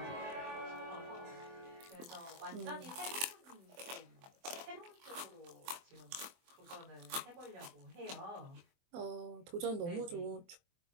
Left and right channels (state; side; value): late; left; 23 ms